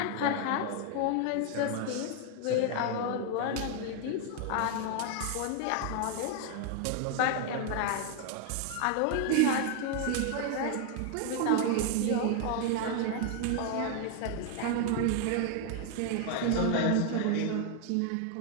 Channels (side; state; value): both; different; correlation 0.00